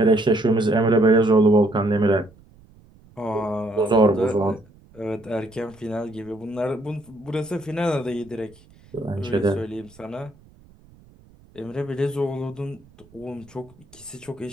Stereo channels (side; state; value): right; noise; rumble, 27 dB below the sound